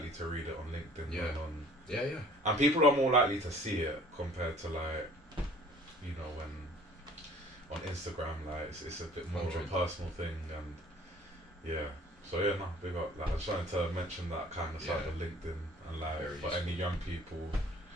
to read it on LinkedIn than on. And people are more likely to see it compared to like, when on Instagram, like it's a bit more of a personal thing, and so So yeah, no, big up. Like, I just wanted to mention that kind of side of LinkedIn, and like Very for useful. any young people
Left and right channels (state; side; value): normal; both; correlation 0.52